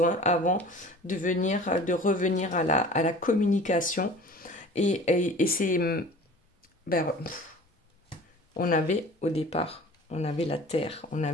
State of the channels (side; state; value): both; normal; correlation 0.43